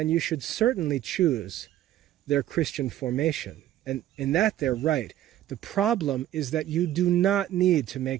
you should certainly choose their Christian formation. And in that, they're right. The problem is that you do not need to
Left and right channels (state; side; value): quieter; left; 12.9 dB